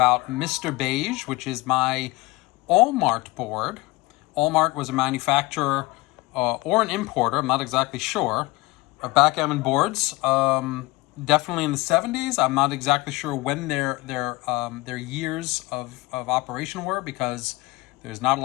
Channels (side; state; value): right; quieter; 21.4 dB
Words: Mr. Beige, which is my All-Mart board. All-Mart was a manufacturer or an importer, I'm not exactly sure, of backgammon boards. Definitely in the 70s. I'm not exactly sure when their years of operation were because there's not a